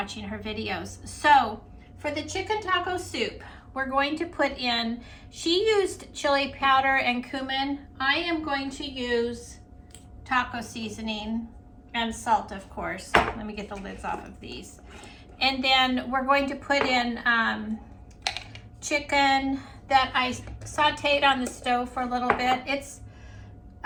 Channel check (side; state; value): both; identical; correlation 1.00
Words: her videos. So for the chicken taco soup, we're going to put in, she used chili powder and cumin. I am going to use taco seasoning and salt, of course. Let me get the lids off of these. And then we're going to put in chicken that I sauteed on the stove for a little bit. It's,